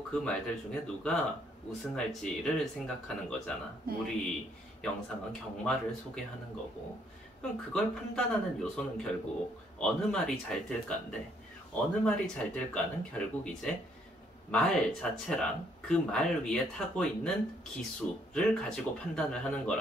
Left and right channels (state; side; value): normal; both; correlation 0.68